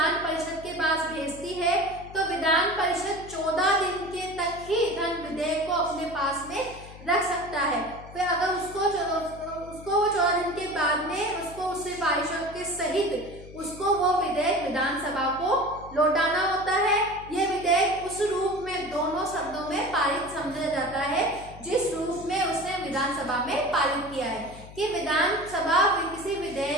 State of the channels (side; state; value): left; noise; hum, 17 dB below the sound